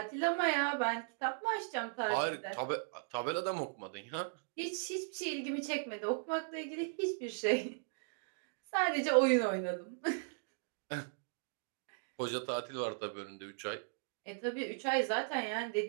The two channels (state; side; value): silent; left; digital silence